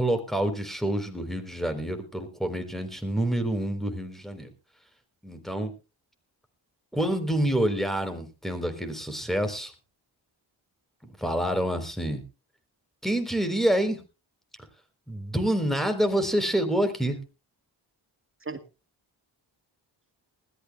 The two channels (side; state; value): both; normal; correlation 0.80